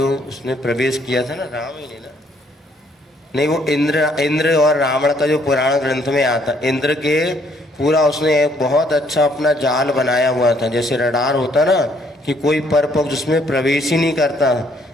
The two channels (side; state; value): both; normal; correlation 0.66